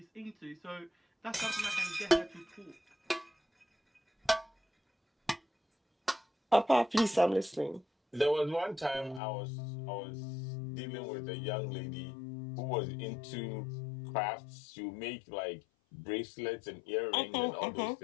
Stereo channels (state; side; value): drops out; right; at 9.2 s